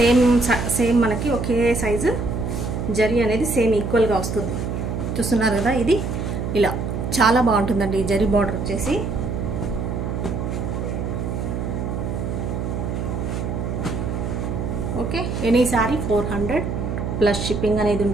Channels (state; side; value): noise; right; hum, 3 dB below the sound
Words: సేమ్ మనకి ఒకే సైజు జరీ అనేది సేమ్ ఈక్వల్గా వస్తుంది. చూస్తున్నారు కదా, ఇది ఇలా చాలా బాగుంటుందండి. ఈ జరీ బార్డర్ వచ్చేసి okay. Any sari 400 plus shipping అనేది